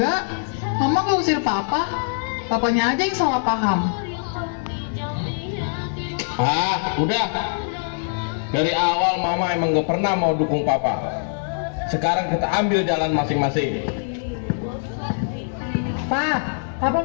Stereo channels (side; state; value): right; silent; digital silence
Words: Mama nggak usir Papa. Papanya aja yang salah paham. Udah. Dari awal Mama emang gak pernah mau dukung Papa. Sekarang kita ambil jalan masing-masing. Pak, Papa